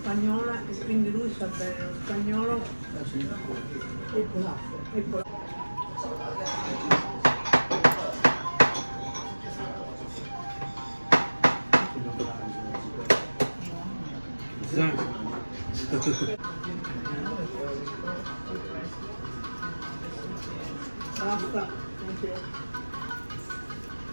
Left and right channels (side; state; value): both; inverted; correlation -1.00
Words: e quindi lui sa bene lo spagnolo e polacco. E polacco. Basta, anche.